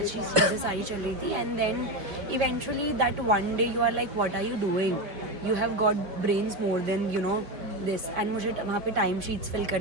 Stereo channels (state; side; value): late; left; 4.6 ms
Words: चीज़ें सारी चल रही थी. And then eventually that one day you are like, what are you doing? You have got brains more than, you know, this. And मुझे वहाँ पे टाइम शीट्स फिल